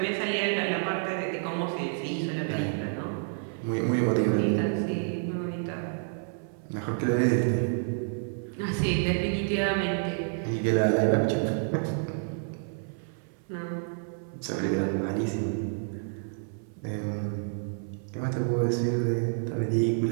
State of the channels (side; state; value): left; silent; 57 dB below the other